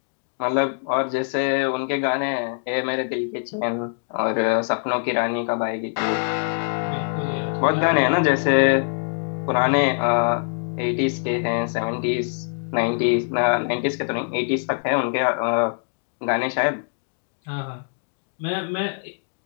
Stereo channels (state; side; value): silent; right; digital silence